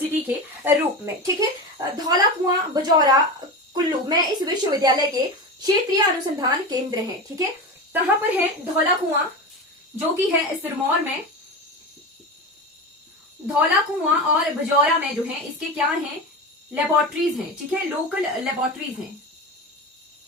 के रूप में। ठीक है, धौला कुआं बजौरा कुल्लू में इस विश्वविद्यालय के क्षेत्रीय अनुसंधान केंद्र हैं। ठीक है, कहां पर है? धौला कुआं, जो कि है सिरमौर में। धौला कुआं और बजौरा में जो है इसके क्या हैं? लेबोरेटरीज हैं। ठीक है, लोकल लेबोरेटरीज हैं।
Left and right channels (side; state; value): both; normal; correlation 0.24